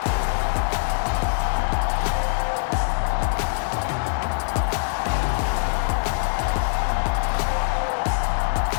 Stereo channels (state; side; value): silent; right; 63 dB below the other